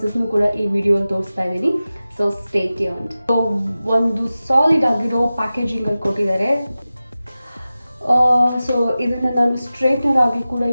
ಕೂಡ ಈ ವಿಡಿಯೋಲ್ಲಿ ತೋರಿಸ್ತಾ ಇದ್ದೀನಿ. So stay tuned. ಸೊ ಒಂದು ಸಾಲಿಡ್ ಆಗಿರೋ ಪ್ಯಾಕೇಜಿಂಗಲ್ಲಿ ಕೊಟ್ಟಿದ್ದಾರೆ. ಸೊ ಇದನ್ನು ನಾನು ಸ್ಟ್ರೈಟ್ನರ್ ಆಗಿ ಕೂಡ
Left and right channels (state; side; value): inverted; both; correlation -0.95